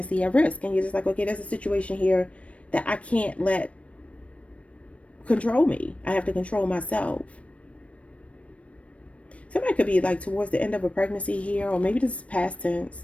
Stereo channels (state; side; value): late; right; 0.063 ms